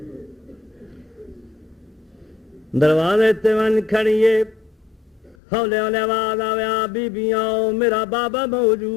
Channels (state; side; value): drops out; right; at 5.4 s